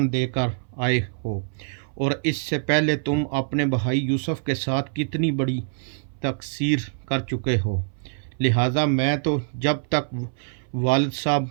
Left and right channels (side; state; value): left; silent; 62 dB below the other